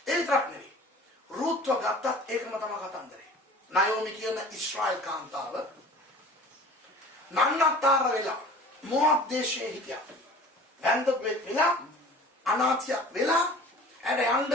ඒ විතරක් නෙවෙයි. රුත්ව ගත්තත් ඒකම තමයි කතන්දරේ. නයෝමි කියන ඉස්රායල් කාන්තාව නන්නතර වෙලා මො압් දේශයේ හිටියා. වැන්දපෙක් වෙලා අනාථයක් වෙලා ඇඩ යන්න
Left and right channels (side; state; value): both; normal; correlation 0.44